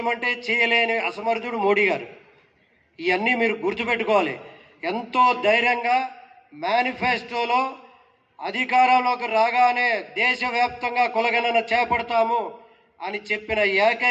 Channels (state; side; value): identical; both; correlation 1.00